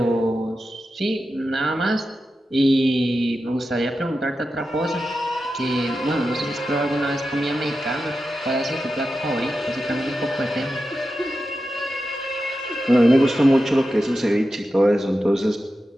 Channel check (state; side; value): normal; both; correlation 0.91